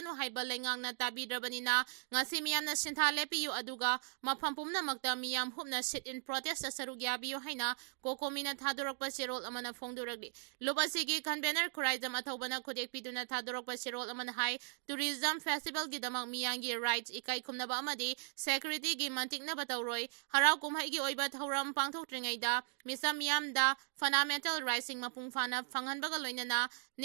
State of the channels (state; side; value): silent; left; digital silence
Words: haiba lengang na tabidrabanina ngasi miyamna sinthale piu aduga mafam pumna makta miyam hupna sit in protest da sarugya biu haina kokomina thadorakpa serol amana phongdoragli lobasigi convener khuraizam athobana khudek piduna thadorakpa serol amana hai tourism festival gi damang miyangi rights ikai khumnaba amadi security gi mantikna bataw Roy harau kumhai gi oiba thauram pangthokringaida misam yamda fundamental rising mapung phana phanghanbaga loinana